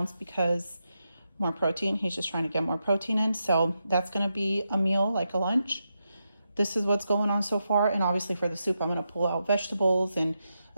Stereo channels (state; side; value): inverted; both; correlation -0.86